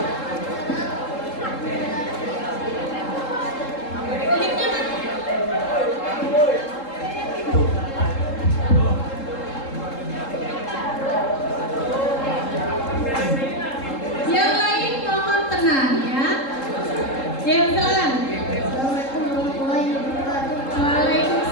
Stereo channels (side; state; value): right; late; 3.7 ms